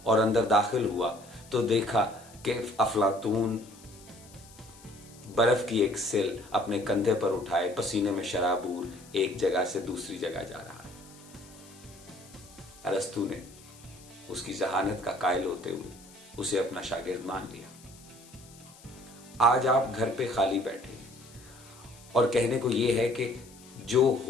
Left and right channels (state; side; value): noise; left; hiss, 22 dB below the sound